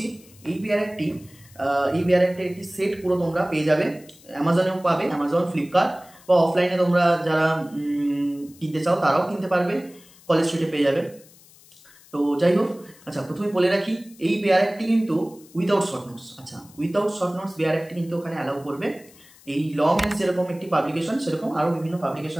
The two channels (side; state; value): left; noise; hiss, 25 dB below the sound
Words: এই বেয়ার অ্যাক্টের একটি সেট পুরো তোমরা পেয়ে যাবে, অ্যামাজনেও পাবে, অ্যামাজন, ফ্লিপকার্ট, বা অফলাইনে তোমরা যারা কিনতে চাও তারাও কিনতে পারবে, কলেজ স্ট্রিটে পেয়ে যাবে। তো যাই হোক, আচ্ছা প্রথমে বলে রাখি এই বেয়ার অ্যাক্টটি কিন্তু উইদাউট শর্ট নোটস। আচ্ছা, উইদাউট শর্ট নোটস বেয়ার অ্যাক্টটি কিন্তু ওখানে অ্যালাউ করবে। এই ল মেন্স যেরকম একটি পাবলিকেশন, সেরকম আরও বিভিন্ন